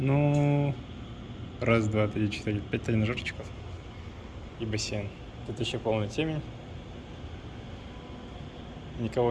1, 2, 3, 4, 5 тренажерчиков и бассейн. Тут еще полная темень.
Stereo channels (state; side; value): identical; both; correlation 1.00